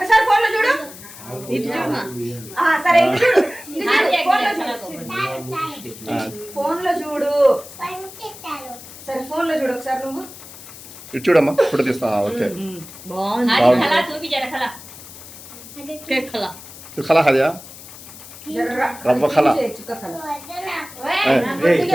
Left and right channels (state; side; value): noise; left; hiss, 16 dB below the sound